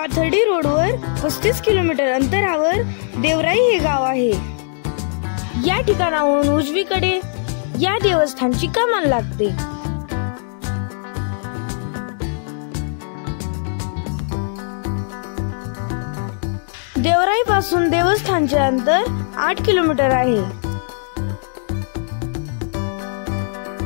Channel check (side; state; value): right; silent; digital silence